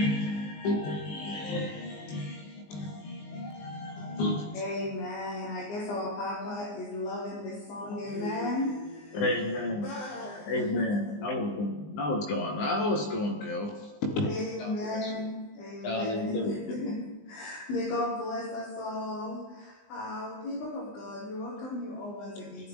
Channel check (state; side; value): late; right; 20 ms